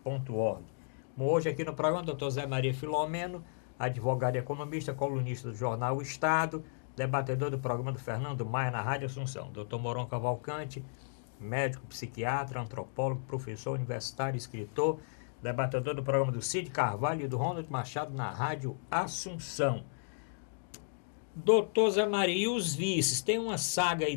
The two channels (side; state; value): right; silent; digital silence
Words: Hoje aqui no programa, Dr. Zé Maria Filomeno, advogado e economista, colunista do jornal O Estado, debatedor do programa do Fernando Maia na Rádio Assunção. Dr. Moron Cavalcante, médico, psiquiatra, antropólogo, professor universitário, escritor, debatedor do programa do Cid Carvalho e do Ronald Machado na Rádio Assunção. Doutor Zé Maria, e os vices? Tem uma saga aí